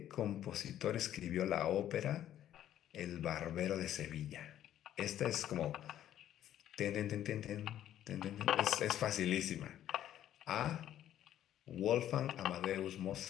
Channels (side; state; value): right; quieter; 11.6 dB